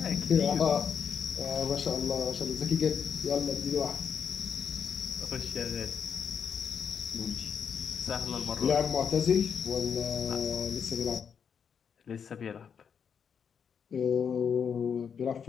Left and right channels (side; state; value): right; quieter; 7.1 dB